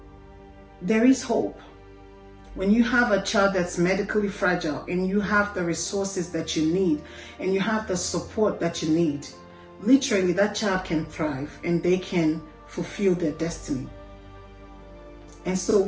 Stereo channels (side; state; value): both; identical; correlation 1.00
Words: there is hope. When you have a child that's medically fragile and you have the resources that you need and you have the support that you need, literally that child can thrive and they can fulfill their destiny. And so